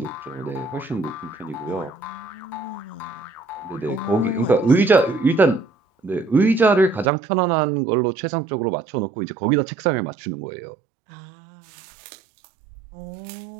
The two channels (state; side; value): drops out; left; at 7.1 s